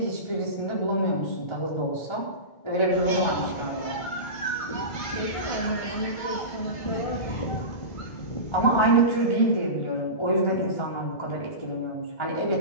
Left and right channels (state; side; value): late; right; 1.5 ms